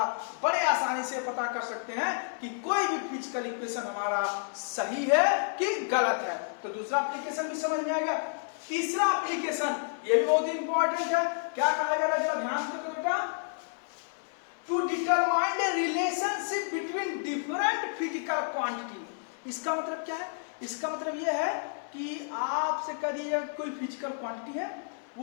बड़े आसानी से पता कर सकते हैं कि कोई भी फिजिकल इक्वेशन हमारा सही है कि गलत है। तो दूसरा एप्लीकेशन भी समझ में आ गया। तीसरा एप्लीकेशन, ये भी बहुत इंपॉर्टेंट है। क्या कहा जा रहा है, जरा ध्यान से देखो बेटा। To determine the relationship between different physical quantity. इसका मतलब क्या है? इसका मतलब यह है कि आपसे कह दिया कोई फिजिकल क्वांटिटी है,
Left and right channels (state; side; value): silent; right; digital silence